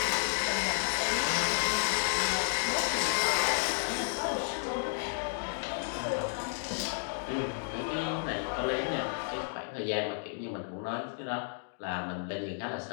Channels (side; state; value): right; silent; digital silence